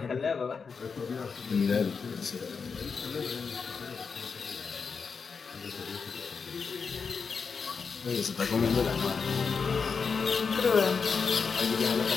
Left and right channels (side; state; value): right; quieter; 5.4 dB